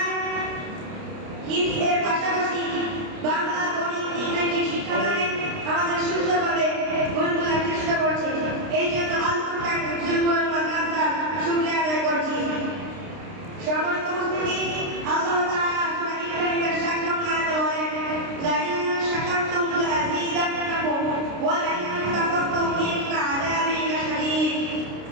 হিফজের পাশাপাশি বাংলা, গণিত, ইংরেজি শিক্ষাদানে আমাদের সুন্দরভাবে গড়ে তোলার চেষ্টা করছে। এই জন্য আল ফুরকান হিফজুল কোরআন মাদ্রাসার শুকরিয়া আদায় করছি। সম্মানিত উপস্থিতি, আল্লাহ তাআলা সূরা ইব্রাহিমের 7 নং আয়াতে বলেন, লা ইন শাকারতুম লাযীদান্নাকুম ওয়া লা ইন কাফারতুম ইন্না আযাবি লাশাদীদ।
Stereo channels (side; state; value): left; late; 29 ms